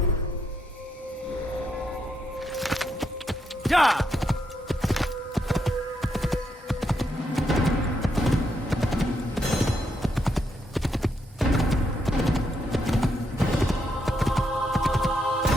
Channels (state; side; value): normal; both; correlation 0.79